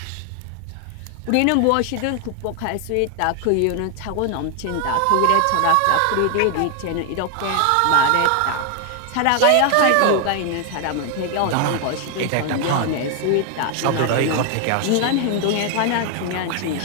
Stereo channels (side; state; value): both; different; correlation 0.00